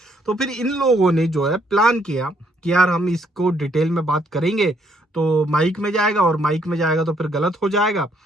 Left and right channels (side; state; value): both; normal; correlation 0.70